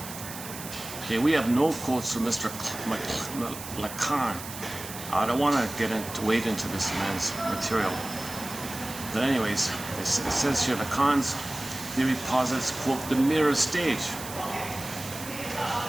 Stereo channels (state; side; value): noise; right; hiss, 11 dB below the sound